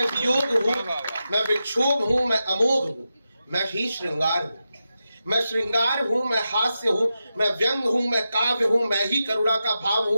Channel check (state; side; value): inverted; both; correlation -0.90